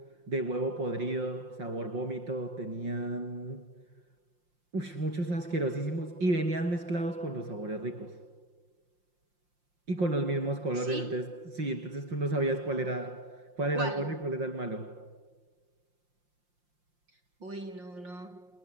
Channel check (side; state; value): left; late; 5.7 ms